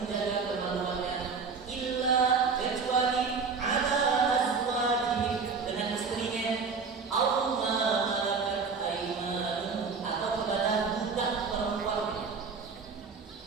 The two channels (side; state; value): left; quieter; 5.1 dB